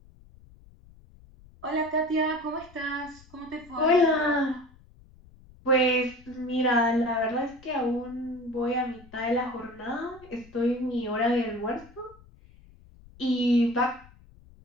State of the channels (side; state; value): left; noise; rumble, 24 dB below the sound